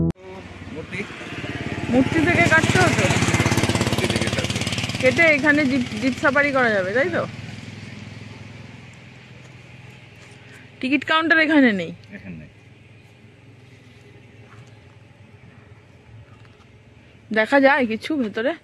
মূর্তি থেকে কাটতে হতো, কেটে এখানে জিপ সাফারি করা যাবে, তাই তো? টিকিট কাউন্টার এখানে নেই। দেখা যায় কিছু ভেতরে?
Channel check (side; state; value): both; identical; correlation 1.00